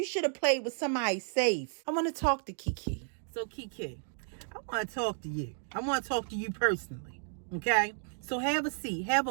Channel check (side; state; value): left; silent; 56 dB below the other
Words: should have played with somebody safe. I want to talk to Kiki. So Kiki, I want to talk to you. I want to talk to you personally. Okay? So have a seat. Have